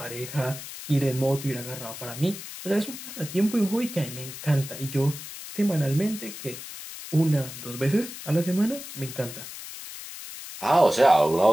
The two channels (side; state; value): left; noise; hiss, 11 dB below the sound